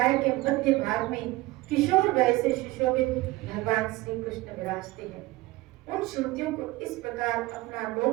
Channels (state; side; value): quieter; left; 19.7 dB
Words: के मध्य भाग में किशोर वय से सुशोभित भगवान श्री कृष्ण विराजते हैं। उन श्रुतियों को इस प्रकार अपना